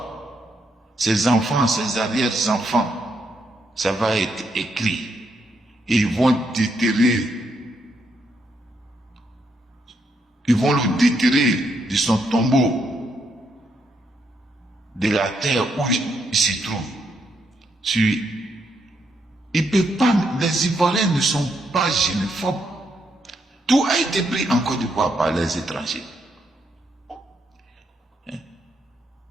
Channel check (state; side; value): normal; both; correlation 0.77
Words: ses enfants, ses arrière-enfants, ça va être écrit. Et ils vont déterrer. Ils vont le déterrer de son tombeau, de la terre où il se trouve. Il peut pas, les Ivoiriens ne sont pas xénophobes. Tout a été pris en Côte d'Ivoire par les étrangers.